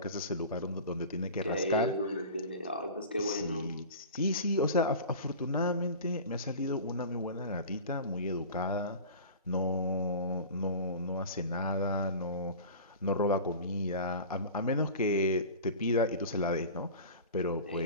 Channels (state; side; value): inverted; both; correlation -0.36